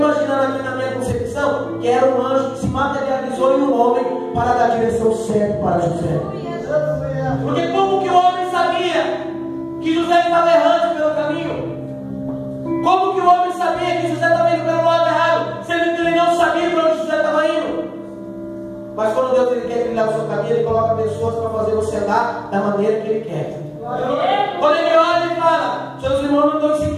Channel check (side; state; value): both; identical; correlation 1.00